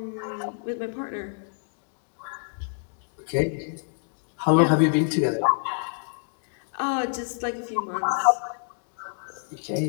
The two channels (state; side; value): silent; right; digital silence